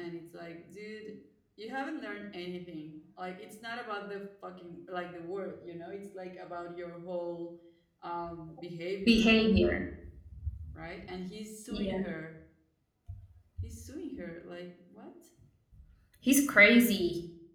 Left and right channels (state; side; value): identical; both; correlation 1.00